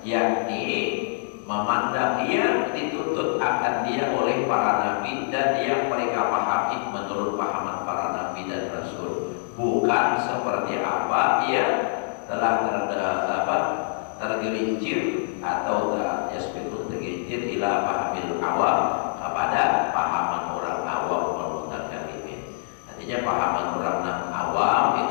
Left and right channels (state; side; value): silent; right; 62 dB below the other